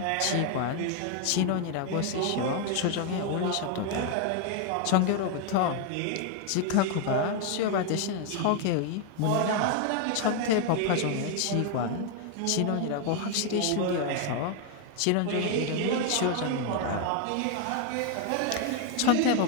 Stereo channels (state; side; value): different; both; correlation 0.01